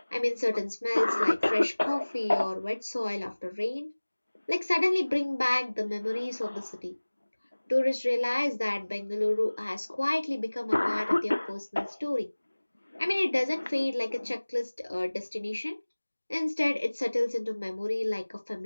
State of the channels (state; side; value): inverted; both; correlation -1.00